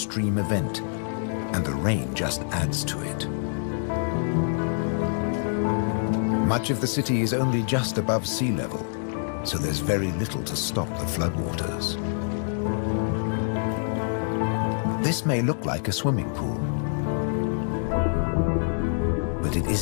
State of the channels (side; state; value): right; silent; digital silence